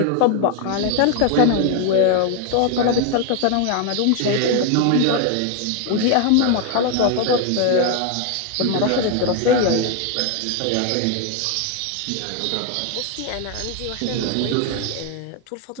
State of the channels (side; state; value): both; different; correlation 0.01